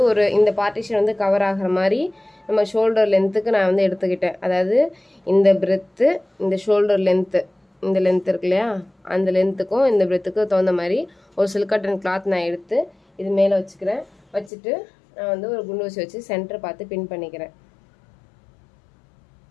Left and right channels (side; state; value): right; drops out; at 14.5 s